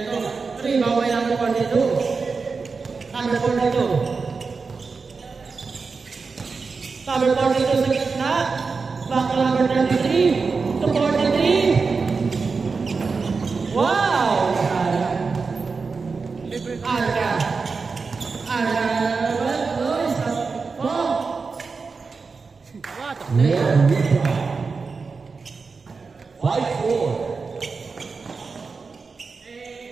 3, baway number 42. Number 42. Number 42 sa gitna. Back to number 33. To 43. Wow! Arca. What a player.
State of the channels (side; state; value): left; quieter; 4.7 dB